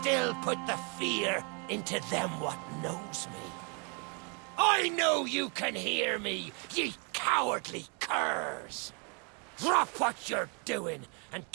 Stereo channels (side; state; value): left; quieter; 36.0 dB